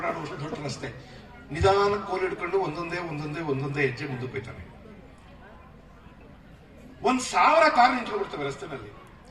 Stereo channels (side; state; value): both; identical; correlation 1.00